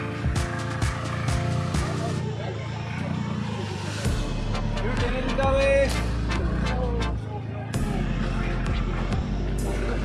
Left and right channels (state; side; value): identical; both; correlation 1.00